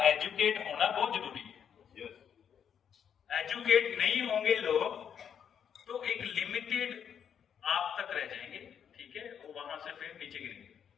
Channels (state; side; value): quieter; right; 8.1 dB